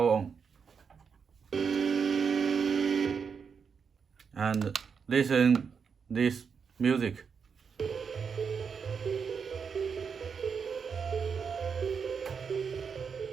on and listen this music.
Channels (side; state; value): left; quieter; 6.2 dB